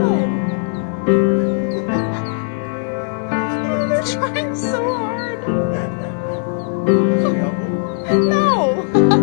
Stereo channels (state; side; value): silent; right; digital silence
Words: Oh, they're trying so hard! No!